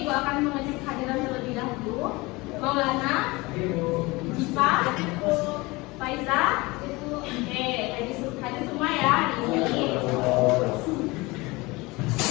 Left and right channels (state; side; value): quieter; right; 23.2 dB